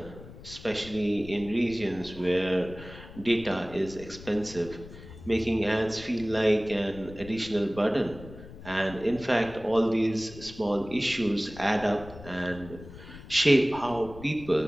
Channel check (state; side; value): noise; left; rumble, 16 dB below the sound